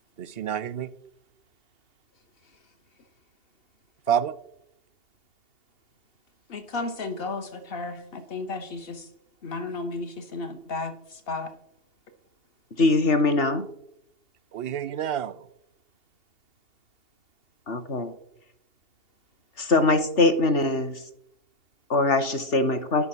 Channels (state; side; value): late; right; 2.8 ms